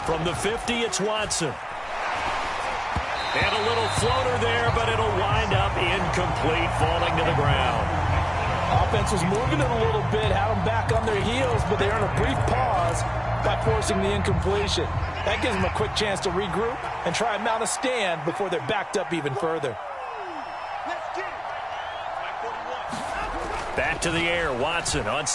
From the 50, it's Watson. And a little floater there, but it'll wind up incomplete, falling to the ground. Offense was moving it a little bit, had them back on their heels, but they earned a brief pause by forcing the incompletion. That gives them a quick chance to regroup and try and mount a stand before they're backed up even further. Back to the air, Watson on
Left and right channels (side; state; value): both; identical; correlation 1.00